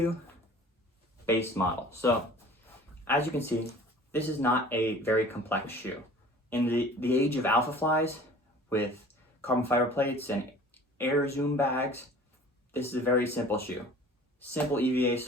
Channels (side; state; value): both; normal; correlation 0.46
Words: base model. So as you can see, this is not a very complex shoe. In the age of Alpha Flies with carbon fiber plates and air zoom bags, this is a very simple shoe. Simple EVA